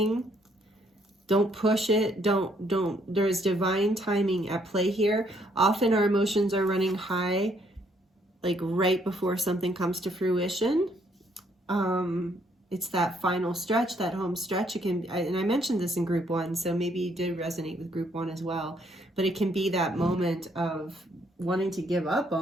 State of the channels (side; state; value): both; normal; correlation 0.68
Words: Don't push it. Don't. There's divine timing at play here. Often our emotions are running high, like right before something comes to fruition. It's that final stretch, that home stretch. It can, and I mentioned this in group 1, so maybe you did resonate with group 1 as well. But it can be that moment of wanting to give up